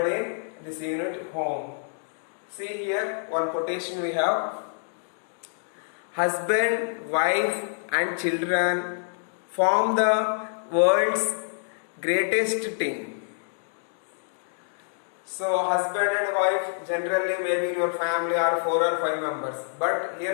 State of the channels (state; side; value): silent; right; digital silence